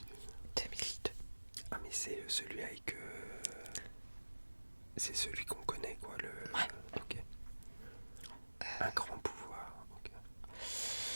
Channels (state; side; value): inverted; both; correlation -1.00